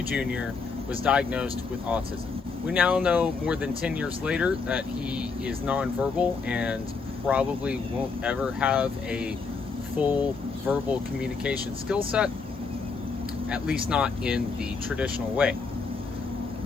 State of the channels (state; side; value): quieter; right; 4.7 dB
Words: Jr., was diagnosed with autism. We now know more than 10 years later that he is nonverbal and probably won't ever have a full verbal communication skill set, at least not in the traditional way.